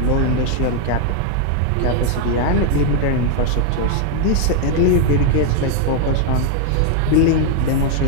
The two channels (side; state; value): both; different; correlation 0.00